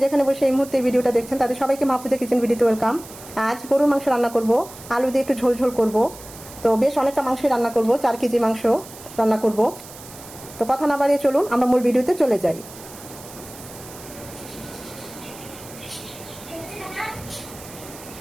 যেখানে বসে এই মুহূর্তে ভিডিওটা দেখছেন তাদের সবাইকে মাহফুজা কিচেন ভিডিওতে ওয়েলকাম। আজ গরুর মাংস রান্না করব, আলু দিয়ে একটু ঝোল ঝোল করব। তো বেশ অনেকটা মাংসই রান্না করব, 4 কেজি মাংস রান্না করব। তো কথা না বাড়িয়ে চলুন আমরা মূল ভিডিওতে চলে যাই।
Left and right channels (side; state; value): right; noise; hiss, 17 dB below the sound